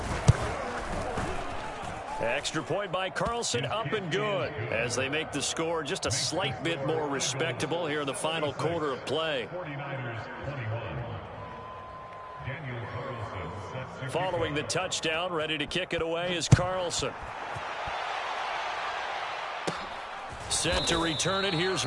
Extra point by Carlson, up and good, as they make the score just a slight bit more respectable here in the final quarter of play. Following the touchdown, ready to kick it away is Carlson. Set to return it, here's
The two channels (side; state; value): both; identical; correlation 1.00